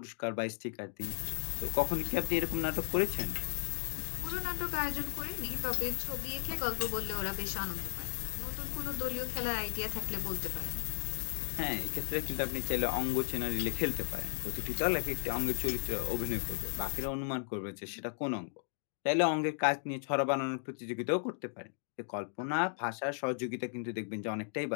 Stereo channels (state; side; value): silent; right; digital silence